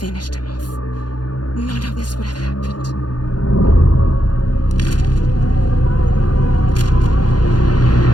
him off, none of this would have happened.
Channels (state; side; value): late; right; 0.70 ms